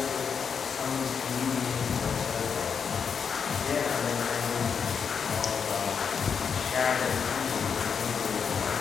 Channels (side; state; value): right; quieter; 6.5 dB